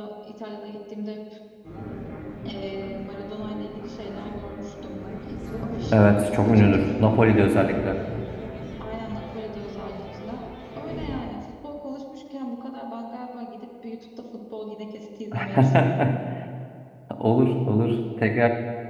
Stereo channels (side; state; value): both; identical; correlation 1.00